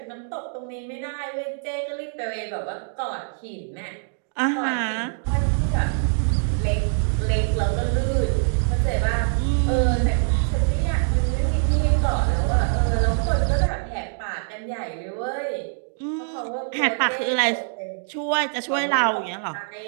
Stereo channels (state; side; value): silent; left; digital silence